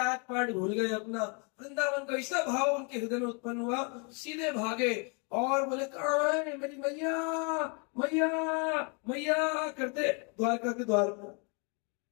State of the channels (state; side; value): quieter; right; 35.8 dB